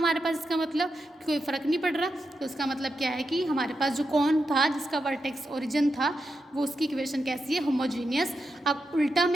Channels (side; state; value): both; normal; correlation 0.87